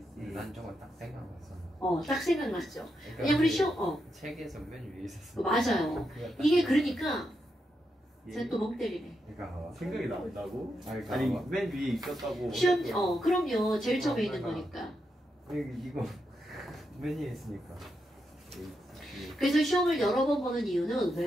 난 저거 딱 생각났어. 딱 생각났죠. 그러니까 왜냐면 우리 그 시험, 책에서 맨 위에 있었어. 맞아요. 이게 그러니까 쟤또 멍 때리네. 그러니까 생각이 난다고? 아니, 아니 맨 위에 있었다고. 시험, 그럼요. 제일 처음에 있는 거니까. 이거 맨 위에 있으니까. 그래서 시험을 여러 번 보는 이유는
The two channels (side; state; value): both; normal; correlation 0.84